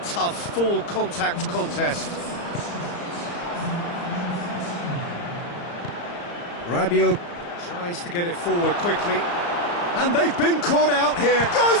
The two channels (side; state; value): right; late; 35 ms